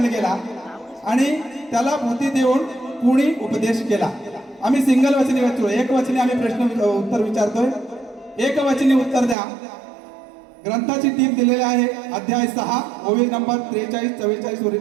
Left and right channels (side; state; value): left; drops out; at 9.3 s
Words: गेला आणि त्याला बुद्धी देऊन कुणी उपदेश केला. आम्ही सिंगल वचनी विचारतो. एक वचनी आम्ही प्रश्न उत्तर विचारतोय. एक वचनी उत्तर द्या. ग्रंथाची टीप दिलेली आहे. अध्याय 6 ओवी नंबर 43-44